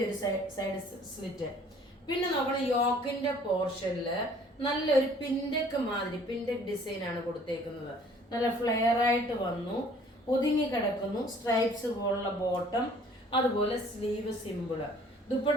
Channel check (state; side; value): normal; both; correlation 0.55